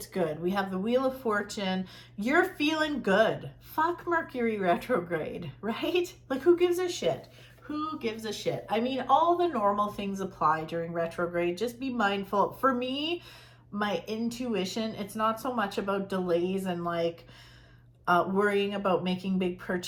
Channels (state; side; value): identical; both; correlation 1.00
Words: good. We have the Wheel of Fortune. You're feeling good. Fuck Mercury retrograde, right? Like, who gives a shit? Who gives a shit? I mean, all the normal things apply during retrograde. Just be mindful. For me, my intuition, it's not so much about delays and like worrying about making big